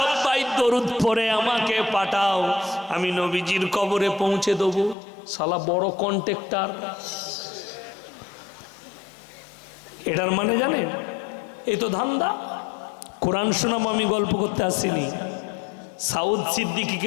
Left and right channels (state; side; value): drops out; right; at 5.0 s